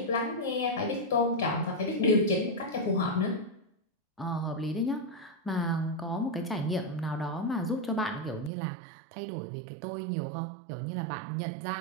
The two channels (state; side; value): drops out; left; at 8.5 s